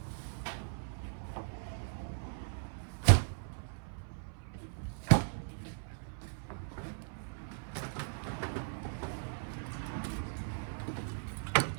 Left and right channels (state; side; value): silent; left; 53 dB below the other